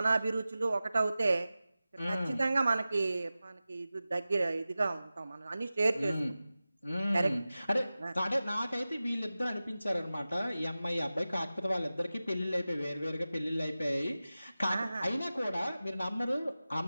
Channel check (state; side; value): inverted; both; correlation -0.95